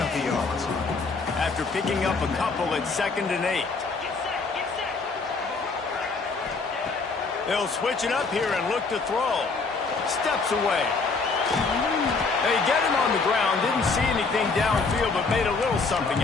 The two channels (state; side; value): quieter; right; 4.3 dB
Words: of yards. After picking up a couple at 2nd and 8. They'll switch it up here and look to throw. Steps away. They get him on the ground. Didn't see anything downfield, but made a little something